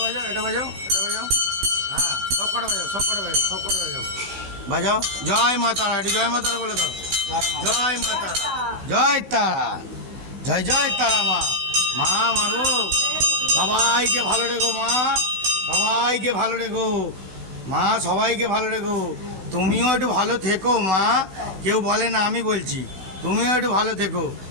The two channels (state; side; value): late; left; 16 ms